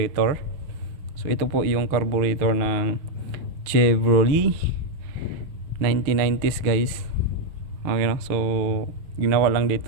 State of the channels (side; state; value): left; late; 6.3 ms